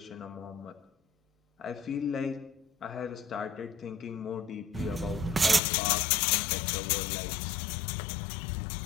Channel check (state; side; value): drops out; right; at 5.6 s